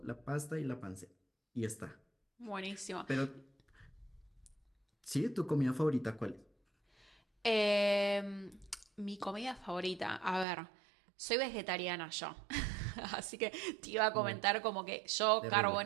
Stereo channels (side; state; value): left; drops out; at 10.5 s